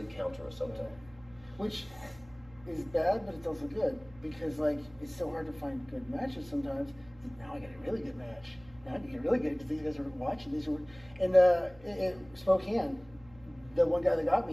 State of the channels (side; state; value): right; noise; hum, 24 dB below the sound